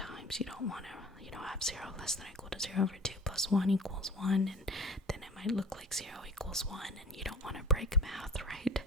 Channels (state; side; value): normal; both; correlation 0.38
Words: you don't want to have 0 less than or equal to 0 over 2 plus 1 equals 1, and then it might look like 0 equals 1, and you don't want to break math, right?